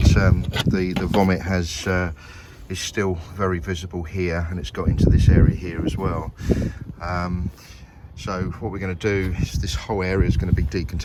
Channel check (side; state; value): both; identical; correlation 1.00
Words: the vomit is still very visible here, and it's got into this area here as well. So what we're going to do is this whole area is going to be